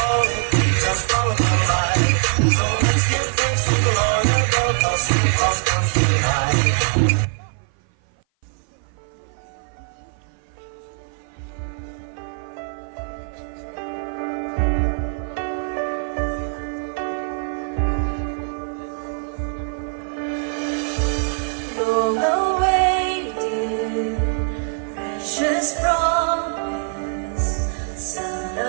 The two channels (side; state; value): left; silent; 56 dB below the other